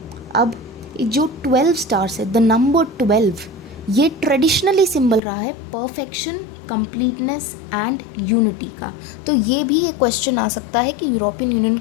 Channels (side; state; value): right; drops out; at 5.2 s